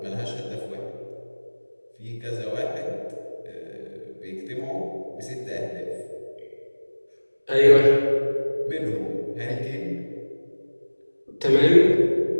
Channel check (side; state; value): both; inverted; correlation -1.00